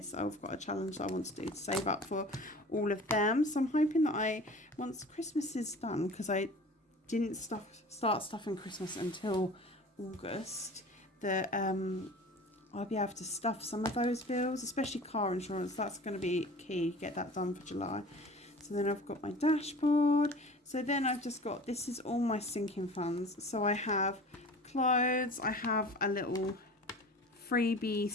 I've got a challenge that I want to do to save up for all of them. So I'm hoping that once Christmas is done, because I didn't start stuffing Christmas until August, that I'll be able to stuff some of those bills, especially car insurance. That's going to be key, get that done for July. So then I've got my dashboard. So then I've just got, this is all my sinking funds. So I have clothes, I have a little freebie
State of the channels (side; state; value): both; normal; correlation 0.41